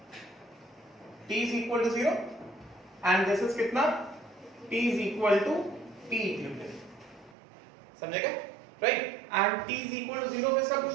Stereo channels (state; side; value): drops out; left; at 7.4 s